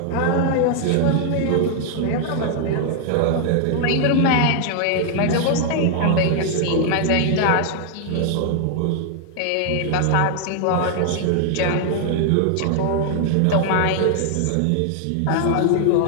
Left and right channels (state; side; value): different; both; correlation 0.00